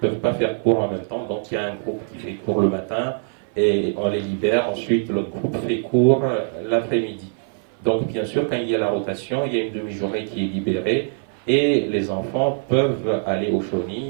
pas faire cours en même temps. Donc il y a un groupe qui fait cours le matin et on les libère. Ensuite, l'autre groupe fait cours l'après-midi. Donc bien sûr, quand il y a la rotation, il y a une demi-journée qui est libérée et les enfants peuvent aller au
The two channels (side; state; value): left; silent; 59 dB below the other